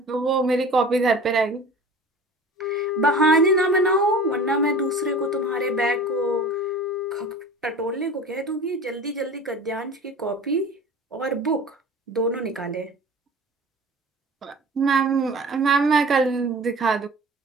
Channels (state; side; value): normal; both; correlation 0.40